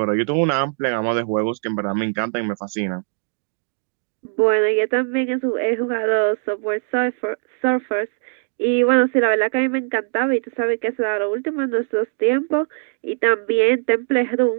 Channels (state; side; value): silent; left; 59 dB below the other